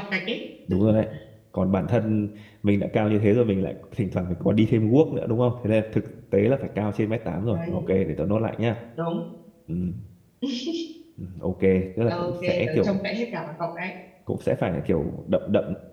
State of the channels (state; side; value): identical; both; correlation 1.00